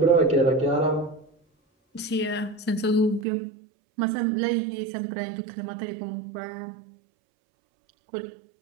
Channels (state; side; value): drops out; left; at 3.2 s